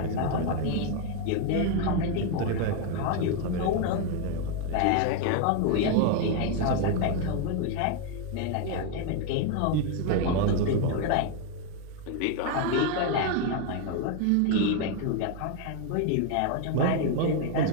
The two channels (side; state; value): both; different; correlation 0.01